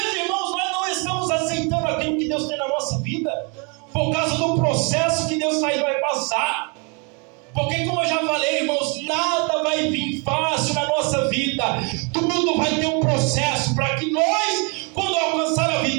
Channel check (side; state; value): left; quieter; 34.2 dB